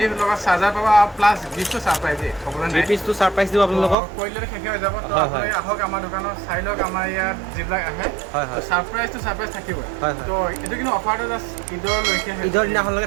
লগত চাৰ্জাৰ পাবা প্লাস গিফটটো সারপ্রাইজ দে কবলে নাই পিছটো সারপ্রাইজ দিব আপোনালোকক কইলে শেষ হৈ যাব তো হয়, আপুনি হয়। আহক আমাৰ দোকানত চাই লওক আমাৰ ইয়াত যিবিলাক আহে হয়, হয়। সাৰপ্ৰাইজ থাকিব হয়, হয়। তো এটো কিন্তু অফাৰটো জাষ্ট ঈদৰ লৈকে ঈদৰ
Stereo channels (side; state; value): left; drops out; at 4.0 s